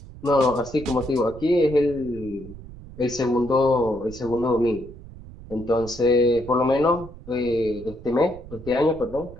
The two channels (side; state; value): right; noise; rumble, 16 dB below the sound